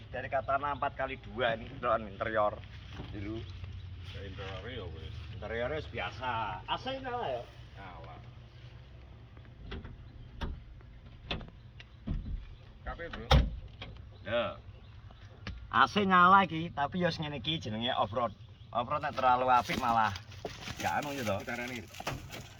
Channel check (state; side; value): identical; both; correlation 1.00